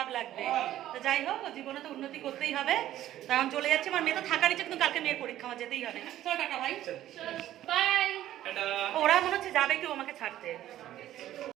লাগবে। তো যাই হোক, ও জীবনে তো উন্নতি করতেই হবে। তখন চলে যাচ্ছে, আমার মেয়ে তো থাকার ইচ্ছে, কিন্তু কালকে মেয়ের পরীক্ষা, আমার যেতেই হবে। চলো টাটা ভাই, বাই। ওরা মনে হচ্ছে যাবে কেউ আমাকে ছাড়তে।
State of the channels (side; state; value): left; quieter; 13.1 dB